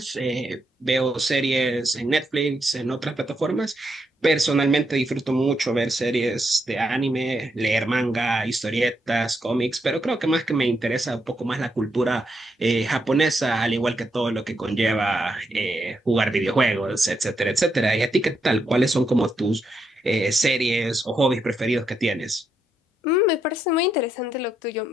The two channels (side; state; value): both; normal; correlation 0.80